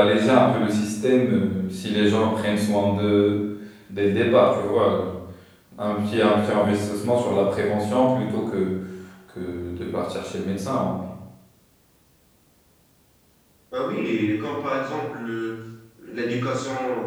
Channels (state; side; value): identical; both; correlation 1.00